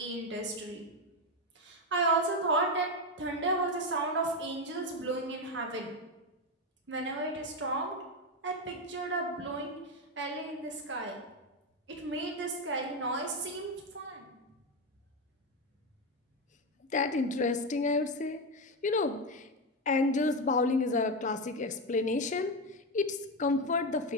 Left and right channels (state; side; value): normal; both; correlation 0.11